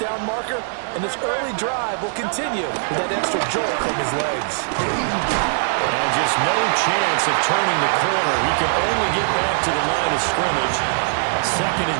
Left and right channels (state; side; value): silent; left; digital silence